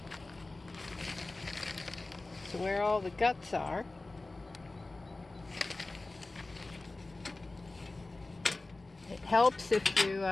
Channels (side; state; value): right; quieter; 3.1 dB